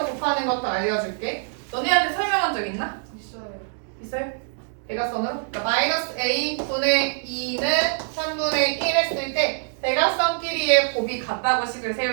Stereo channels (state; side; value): silent; left; 58 dB below the other